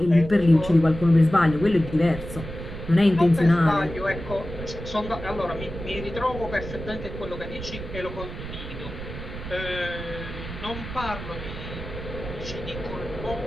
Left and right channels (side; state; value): right; noise; rumble, 10 dB below the sound